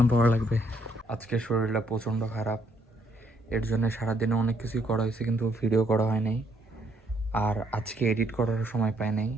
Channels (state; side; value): normal; both; correlation 0.70